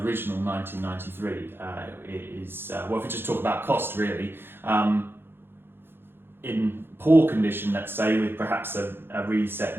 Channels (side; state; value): left; late; 0.10 ms